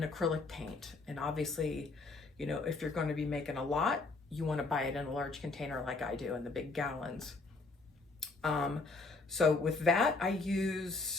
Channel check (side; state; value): right; quieter; 3.7 dB